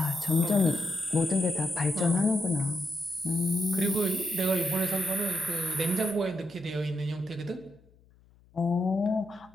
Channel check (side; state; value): left; noise; hum, 29 dB below the sound